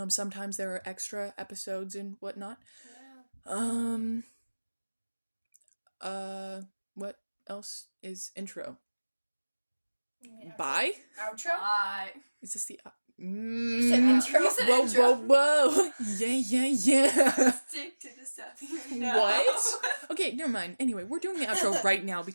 Sometimes there are extra episodes and whatnot. Yeah. What else is intro? Yeah. Bye? Outro? Bye. Is this the... You said intro. You said intro. Whoa. Yeah. Stick to the stuff. What? Okay, never mind. Anyway, we're doing the outro right now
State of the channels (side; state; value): both; inverted; correlation -1.00